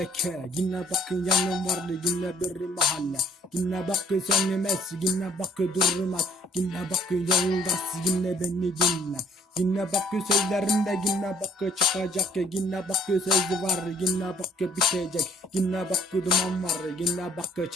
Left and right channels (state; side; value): normal; both; correlation 0.60